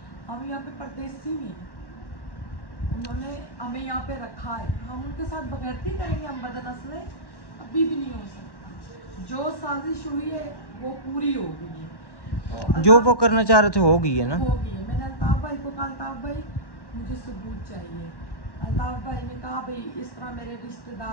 हम यहाँ पे परदेसी हैं, उन्होंने हमें यहाँ पे रखा है, हम उनके साथ बगैरती करेंगे, हम बदनस्लें अभी भी नहीं हो सकता। जो साजिश हुई है वो पूरी हो गई है, तो जो वो करना चाह रहे थे हो गई है ना, हो गई है। मैंने अल्ताफ़ भाई को कहा अल्ताफ़ भाई मुझे सबूत चाहिए। अल्ताफ़ भाई ने कहा भाई इस तरह मेरे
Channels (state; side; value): late; right; 1.1 ms